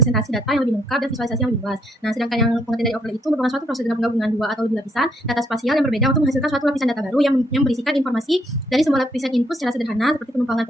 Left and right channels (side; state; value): both; normal; correlation 0.71